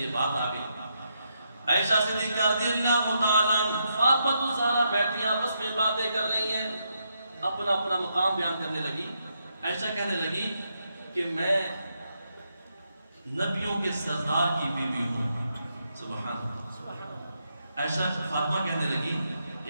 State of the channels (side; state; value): both; inverted; correlation -0.80